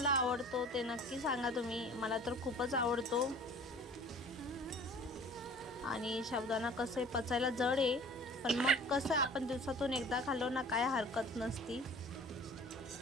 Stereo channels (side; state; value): both; normal; correlation 0.46